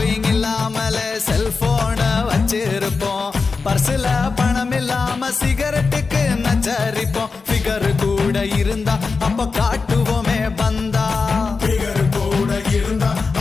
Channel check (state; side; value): quieter; right; 4.5 dB